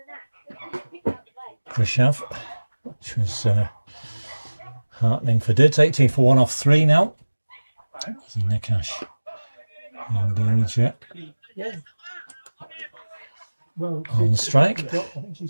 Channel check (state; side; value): inverted; both; correlation -1.00